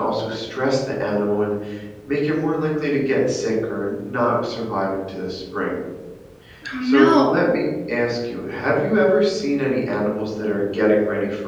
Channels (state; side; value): identical; both; correlation 1.00